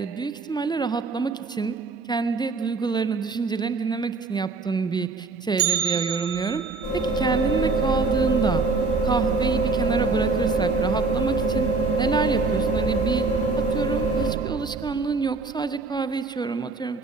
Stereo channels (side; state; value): left; quieter; 4.0 dB